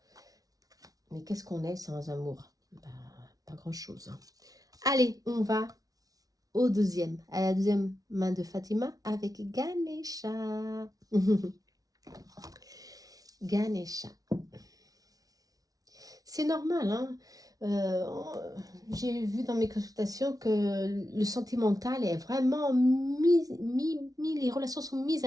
Mais qu'est-ce qu'on est sans amour? Bah, pas grand-chose, hein. Allez, on va à la deuxième main de Fatima avec Ganesha. Ganesha. C'est normal, hein. J'ai vu dans mes consultations que le sentimental est vraiment les relations sont mises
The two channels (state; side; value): late; left; 0.18 ms